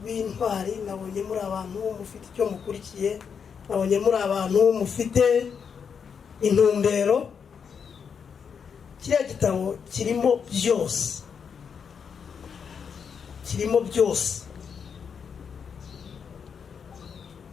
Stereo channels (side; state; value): right; quieter; 6.7 dB